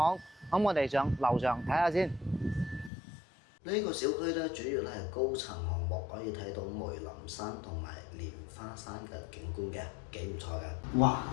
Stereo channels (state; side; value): drops out; right; at 2.9 s